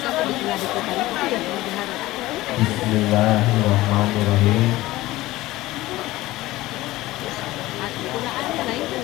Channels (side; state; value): right; quieter; 17.8 dB